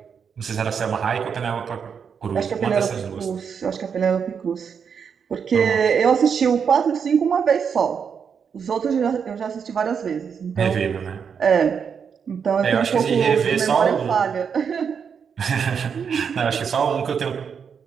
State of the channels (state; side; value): quieter; left; 6.8 dB